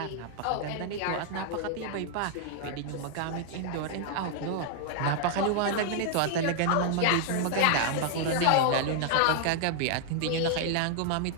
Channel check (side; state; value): both; different; correlation 0.00